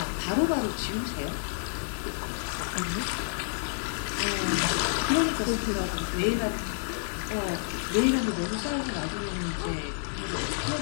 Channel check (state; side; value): silent; right; digital silence